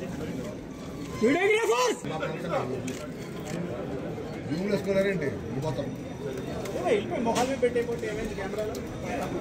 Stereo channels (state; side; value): identical; both; correlation 1.00